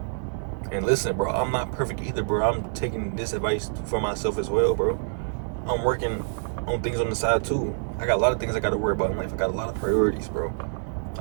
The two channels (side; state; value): left; silent; digital silence